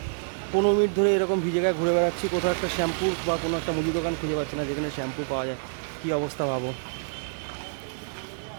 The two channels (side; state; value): left; silent; 60 dB below the other